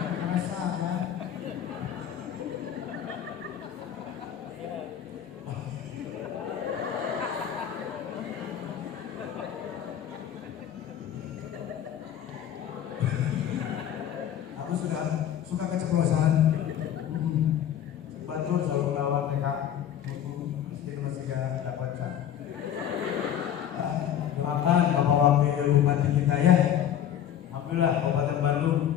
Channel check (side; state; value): right; quieter; 10.0 dB